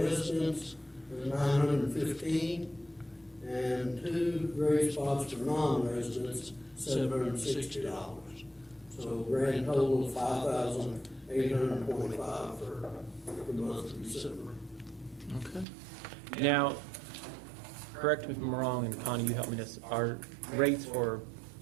$915. And 2 grave spots for non-residents, $760. So grand total of $5,825 for the month of December. Okay. Now, correct me if I'm wrong, and Connie, you help me this, our rates for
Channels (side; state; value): left; drops out; at 15.7 s